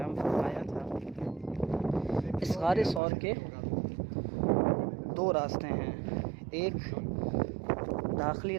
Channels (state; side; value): drops out; left; at 3.0 s